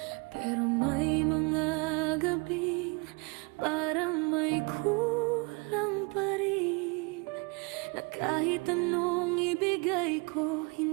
Pero may mga gabing parang may kulang pa rin, na kahit anong ibigay ko,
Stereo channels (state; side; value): quieter; left; 29.6 dB